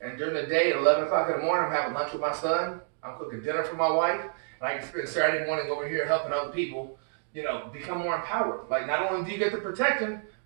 And during the day at 11 o'clock in the morning, I'm having lunch with my son. I'm cooking dinner for my wife. And I can spend Saturday morning over here helping other people, you know, become more empowered. Like, not only do you get the protection,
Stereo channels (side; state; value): left; silent; digital silence